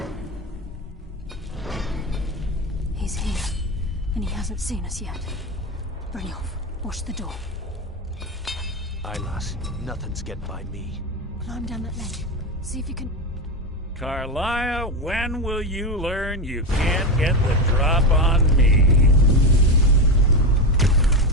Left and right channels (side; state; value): both; normal; correlation 0.16